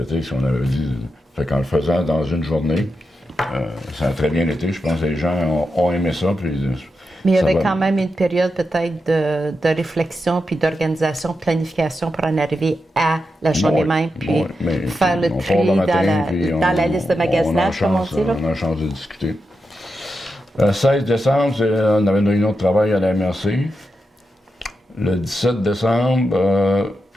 ce qu'on avait dit. Fait qu'en le faisant dans une journée, ça a très bien été. Je pense que les gens ont aimé ça. Puis, mais il y avait quand même une période peut-être de réflexion, puis d'organisation, de planification pour en arriver à la journée même, puis faire le tri dans la liste de magasinage, comme on dit. Là. On a la chance de discuter. Le 16 décembre, on avait une réunion de travail à la MRC. Le 17 décembre,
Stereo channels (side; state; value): both; normal; correlation 0.87